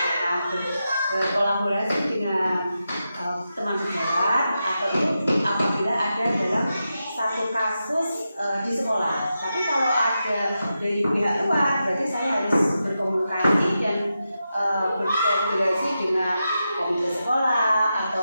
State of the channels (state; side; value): inverted; both; correlation -0.89